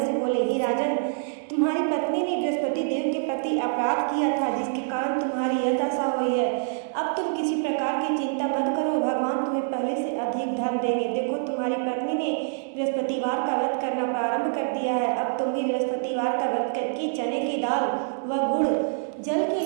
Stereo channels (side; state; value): left; silent; digital silence